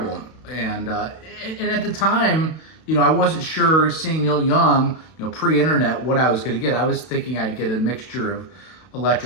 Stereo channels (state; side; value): late; right; 32 ms